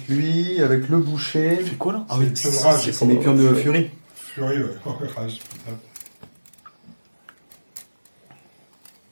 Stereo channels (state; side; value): inverted; both; correlation -1.00